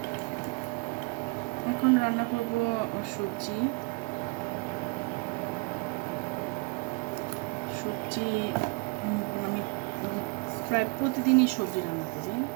এখন রান্না করব সবজি। আমি প্রায় প্রতিদিনই সবজি রান্না করি।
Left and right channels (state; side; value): quieter; left; 30.0 dB